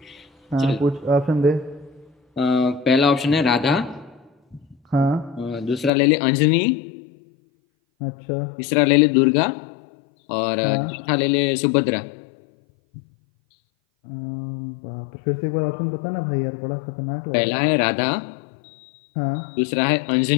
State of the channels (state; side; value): drops out; right; at 5.9 s